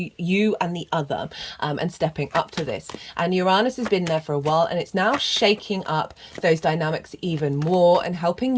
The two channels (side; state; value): both; identical; correlation 1.00